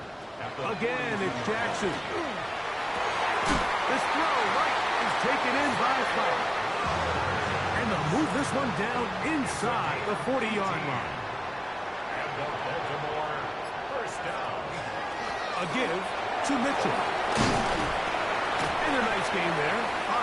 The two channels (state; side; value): identical; both; correlation 1.00